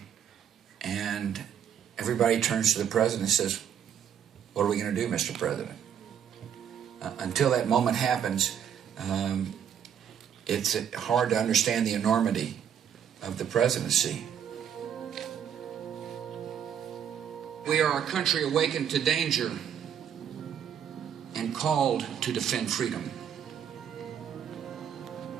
and everybody turns to the president and says, "What are we going to do, Mr. President?" Until that moment happens, it's hard to understand the enormity of the presidency. We are a country awakened to danger and called to defend freedom.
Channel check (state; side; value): quieter; left; 8.7 dB